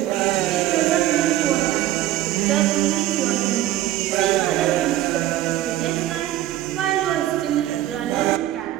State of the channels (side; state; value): left; quieter; 13.9 dB